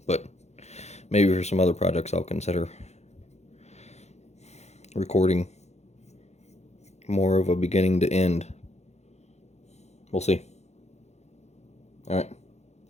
But maybe for some other projects I'll consider recording more of a beginning to end. We'll see. Alright,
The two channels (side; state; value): right; late; 0.32 ms